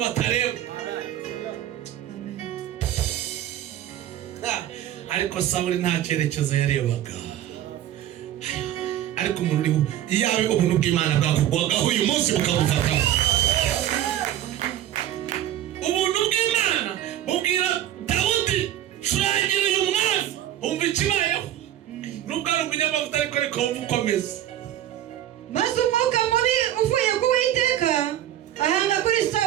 batareba. Ariko Sawuli nta cyerekezo yarebaga. Ariko umuntu uri iyawe ubuntu bw'Imana bwakugwagaho uyu munsi bukamufataho. Ubuntu bw'Imana bubwira Dawudi curangira uyu mwami umva ikibayeho. Nubwo ari umunyamavuta ariko reka wumva uko ameze. Maze umwuka mubi uvuye ku Uwiteka ahanga kuri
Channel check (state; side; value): quieter; left; 12.1 dB